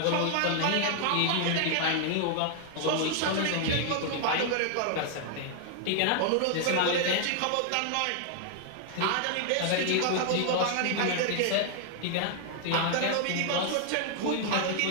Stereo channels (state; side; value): different; both; correlation 0.00